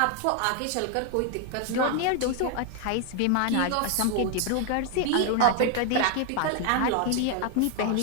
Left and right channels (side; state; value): both; different; correlation 0.01